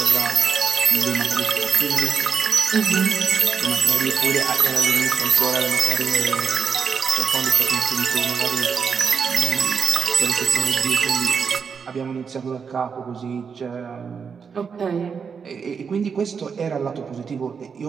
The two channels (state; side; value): quieter; left; 6.1 dB